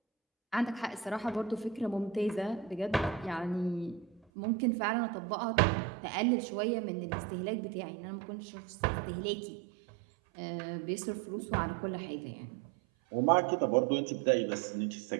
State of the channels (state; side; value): drops out; left; at 4.2 s